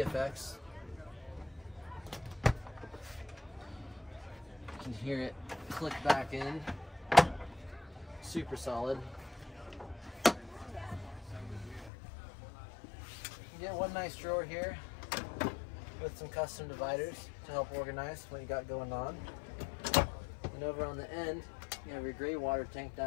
You can hear it click back in. Super solid. You get one nice drawer here with some custom dividers to help organize what you got going on. And over on the end, you have your gray water tank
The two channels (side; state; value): right; drops out; at 11.9 s